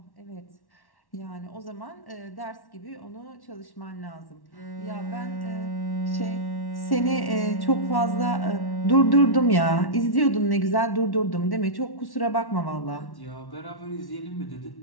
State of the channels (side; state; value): right; late; 1.1 ms